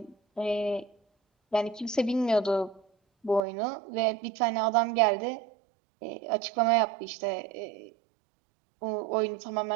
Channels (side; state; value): left; drops out; at 3.4 s